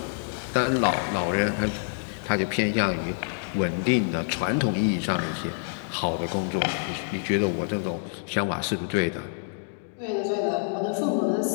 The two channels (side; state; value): right; silent; digital silence